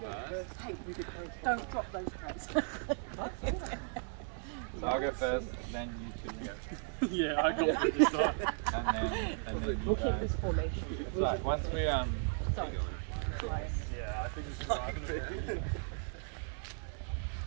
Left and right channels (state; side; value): silent; left; 54 dB below the other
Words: Don't drop those trays. So I'll go first, then you two go. Yeah, I got it this time. And then you We'll keep guys. this formation. It's like once we Sorry. Yeah, I think this is right.